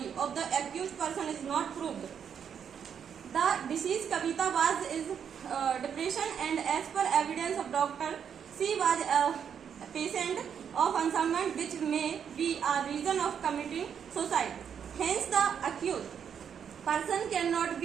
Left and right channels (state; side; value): quieter; left; 7.8 dB